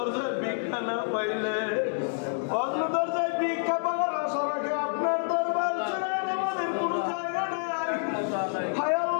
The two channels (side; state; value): right; silent; 59 dB below the other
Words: ভিক্ষা না পাইলে অন্য দরজায় ভিক্ষা পাওয়ার আশা রাখে আপনার দরবার ছাড়া আমাদের কোনো জায়গা নাই। হায়